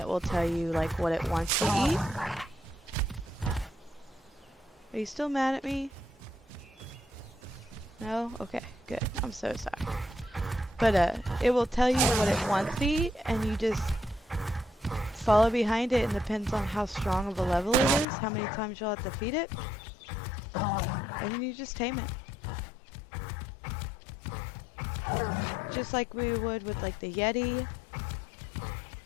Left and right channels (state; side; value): drops out; right; at 18.1 s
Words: will tell you like what it wants to eat. Are you still mad at me? No? Okay, good. I'm so sorry. But it will tell you what it wants to eat, and you just follow behind it, and depends on how strong of a level it is, how many times you'll have to feed it, and then you just tame it. Just like we would with like the Yeti